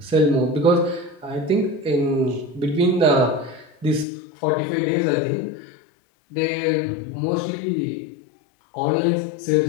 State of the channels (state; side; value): drops out; right; at 4.0 s